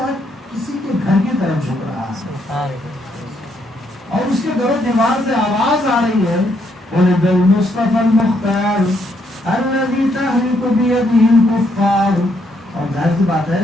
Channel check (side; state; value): both; normal; correlation 0.74